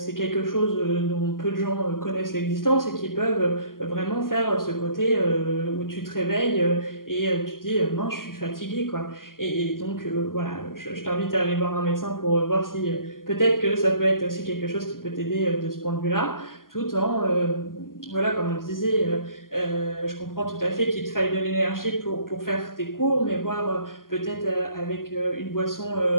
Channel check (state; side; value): late; right; 0.91 ms